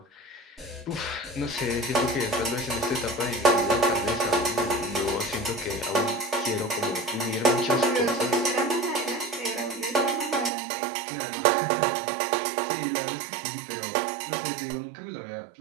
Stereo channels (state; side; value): drops out; left; at 10.5 s